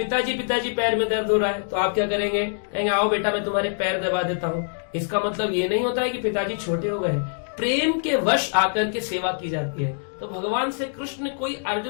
पिताजी पैर में दर्द हो रहा है, तो आप क्या करेंगे? कहेंगे आओ बेटा मैं तुम्हारे पैर दबा देता हूँ। इसका मतलब ये नहीं होता है कि पिताजी छोटे हो गए, प्रेम के वश आकर के सेवा की जाती है। तो भगवान से कृष्ण कोई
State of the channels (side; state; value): right; silent; digital silence